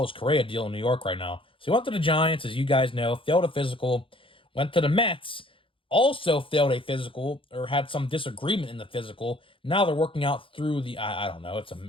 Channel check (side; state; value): right; late; 0.25 ms